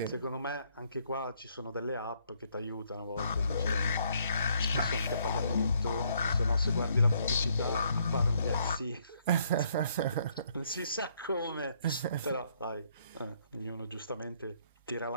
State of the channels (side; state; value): both; inverted; correlation -0.69